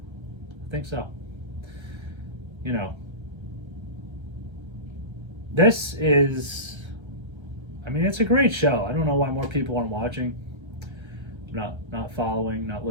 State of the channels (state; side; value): late; left; 1.3 ms